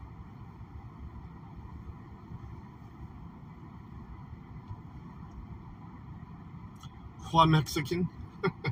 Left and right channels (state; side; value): identical; both; correlation 1.00